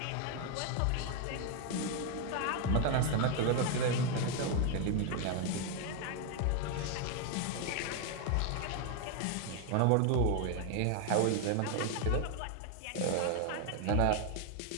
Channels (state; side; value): different; both; correlation 0.01